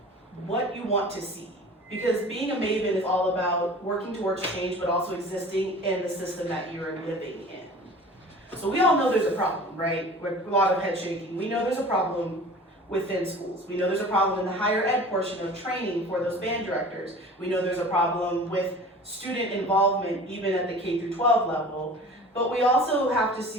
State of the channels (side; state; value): both; normal; correlation 0.42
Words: what you want to see. Because being a maven is all about working towards change, but also existing in the system that you're living in. So we all know there's a problem, right? With a lot of head shaking. We know there's a problem within schools. We know there's a problem in the higher ed portion of training for those band directors. We know there's a problem with student involvement even at the K through 12 level. But we also have to